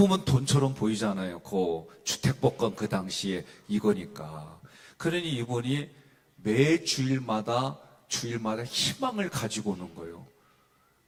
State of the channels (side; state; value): both; identical; correlation 1.00